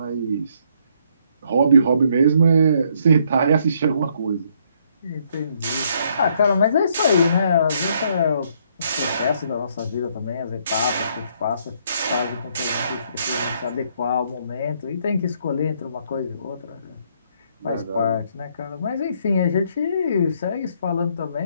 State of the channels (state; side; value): inverted; both; correlation -0.69